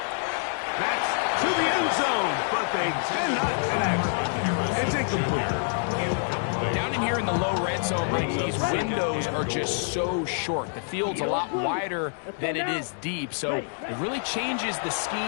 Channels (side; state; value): right; silent; 60 dB below the other